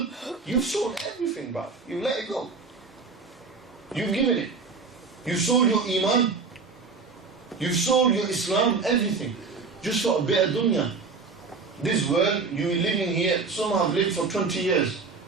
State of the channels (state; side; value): quieter; left; 4.6 dB